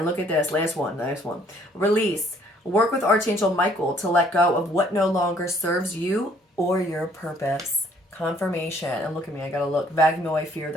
look at this. Last one. Release. Work with Archangel Michael to let go of what no longer serves you or your purpose. Confirmation. And look at me. I gotta look. Vagnoi fear,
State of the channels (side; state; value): both; normal; correlation 0.62